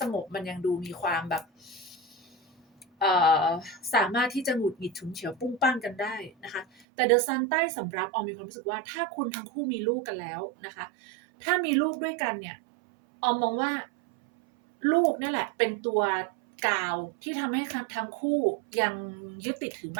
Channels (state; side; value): drops out; left; at 6.7 s